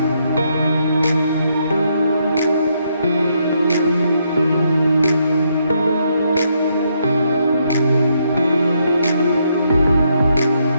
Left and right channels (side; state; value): both; inverted; correlation -0.76